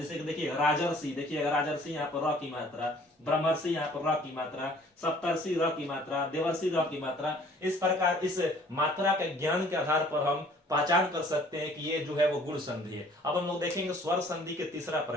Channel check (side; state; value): both; normal; correlation 0.55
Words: कि देखिए राजर्षि, देखिएगा राजर्षि यहाँ पर र की मात्रा, ब्रह्मर्षि यहाँ पर र की मात्रा, सप्तर्षि र की मात्रा, देवर्षि र की मात्रा। इस प्रकार इस मात्रा के ज्ञान के आधार पर हम पहचान कर सकते हैं कि ये जो है वो गुण संधि है। अब हम लोग देखेंगे स्वर संधि के तीसरा